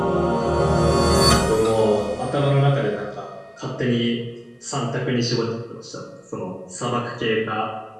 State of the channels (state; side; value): identical; both; correlation 1.00